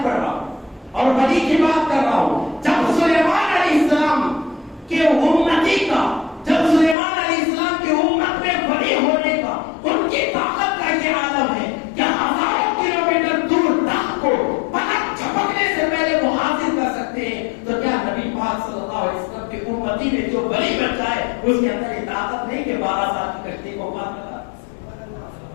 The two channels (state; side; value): drops out; right; at 7.0 s